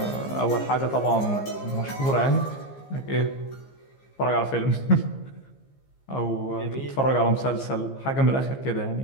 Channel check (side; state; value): right; late; 15 ms